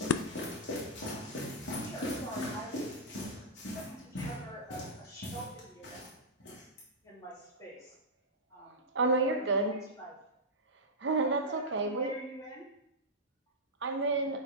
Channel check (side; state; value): both; normal; correlation -0.10